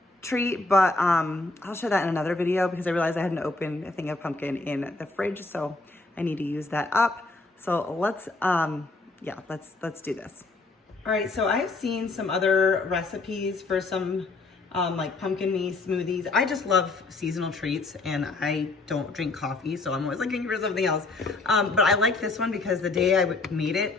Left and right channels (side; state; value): right; quieter; 3.5 dB